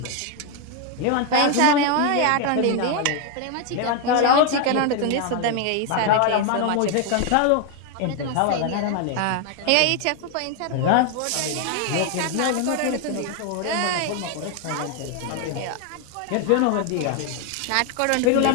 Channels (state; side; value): different; both; correlation 0.01